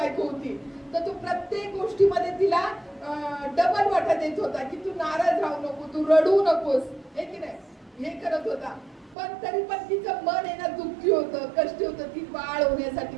होती. तर तो प्रत्येक गोष्टीमध्ये तिला डबल वाटा देत होता की तू नाराज राहू नको, तू रडू नकोस, हे की नाही, हे करत होता. पण तरी पण तिचं मन आहे ना दुःखी होतं, कष्टी होतं, ती बाळ होण्यासाठी,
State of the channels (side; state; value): left; drops out; at 9.2 s